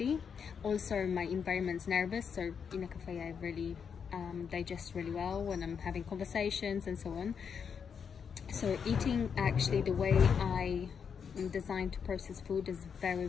Also my environment's nervous, so in a cafe I really digest really well when I'm having conversations and so on. So eating, actually the way I am designed to process food is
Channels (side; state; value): right; quieter; 6.8 dB